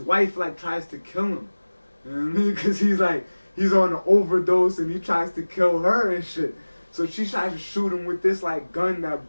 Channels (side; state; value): both; inverted; correlation -1.00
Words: like tries to kill him. You know what I mean? Because he's like, he's on an overdose and he tries to kill her and shit. So she tries to shoot him with this like gun that